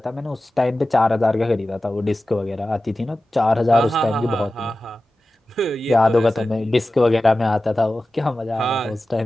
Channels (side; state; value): both; normal; correlation 0.95